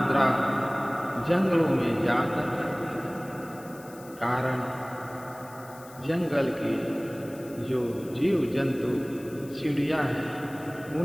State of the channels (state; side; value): noise; left; hiss, 21 dB below the sound